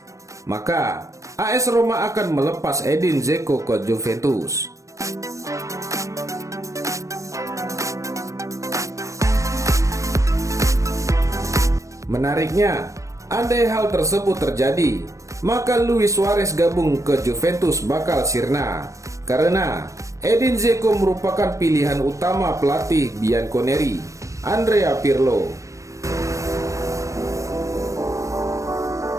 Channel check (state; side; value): late; left; 0.15 ms